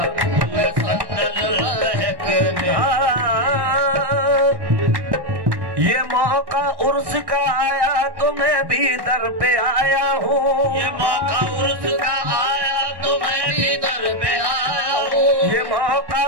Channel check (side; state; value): left; late; 1.1 ms